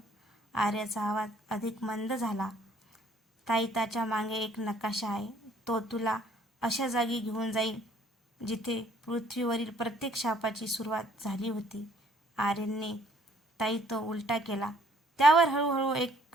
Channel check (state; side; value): normal; both; correlation 0.61